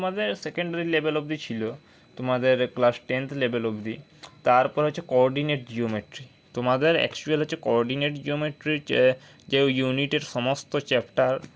সেকেন্ডারি লেভেল অবধি ছিল, তোমাদের ক্লাস 10th লেভেল অবধি। তারপর হচ্ছে কোঅর্ডিনেট জিওমেট্রি, তোমাদের অ্যাকচুয়াল হচ্ছে কোঅর্ডিনেট জিওমেট্রির যে ইউনিটের সমস্ত চ্যাপ্টার,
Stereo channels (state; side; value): identical; both; correlation 1.00